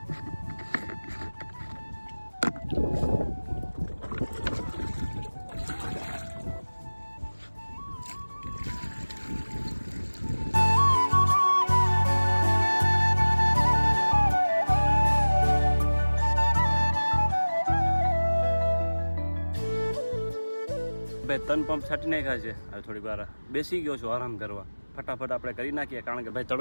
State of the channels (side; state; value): both; inverted; correlation -1.00